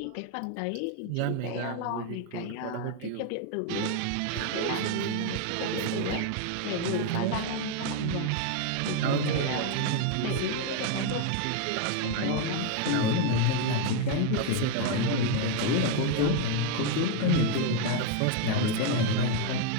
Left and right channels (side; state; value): both; different; correlation 0.01